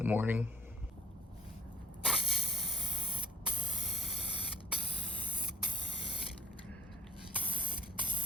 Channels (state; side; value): normal; both; correlation 0.49